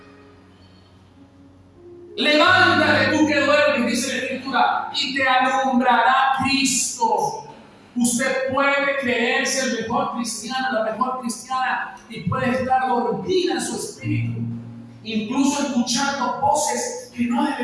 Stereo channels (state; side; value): identical; both; correlation 1.00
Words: Levántate tú que duermes, dice la Escritura, y te alumbrará Cristo. Usted puede creerse el mejor cristiano, la mejor cristiana, y puede estar dormida en su espíritu, incluso escuchando voces que no